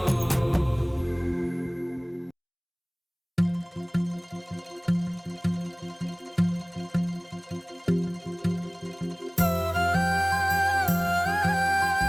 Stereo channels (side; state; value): both; identical; correlation 1.00